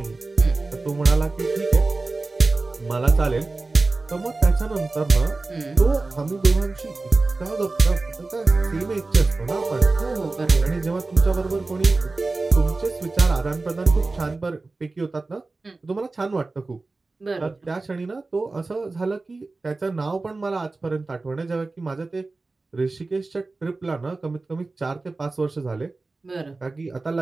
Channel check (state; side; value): quieter; left; 3.5 dB